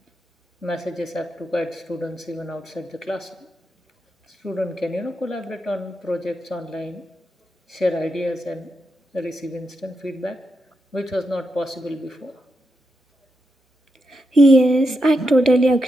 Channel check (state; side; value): normal; both; correlation 0.85